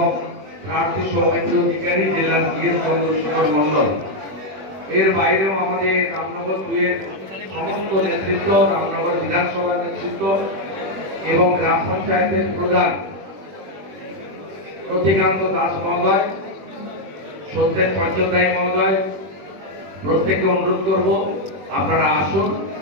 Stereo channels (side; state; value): left; late; 21 ms